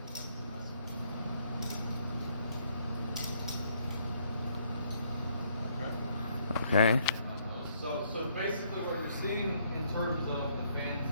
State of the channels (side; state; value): both; inverted; correlation -0.69